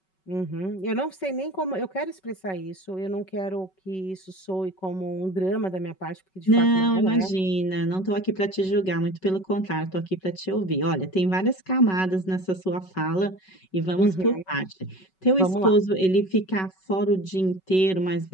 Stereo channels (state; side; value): late; right; 5.3 ms